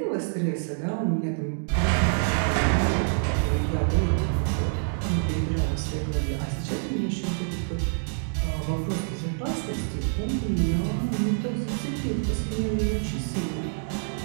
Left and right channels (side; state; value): left; silent; digital silence